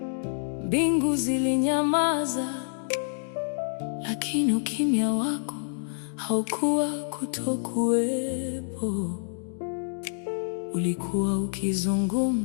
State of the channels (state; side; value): silent; right; digital silence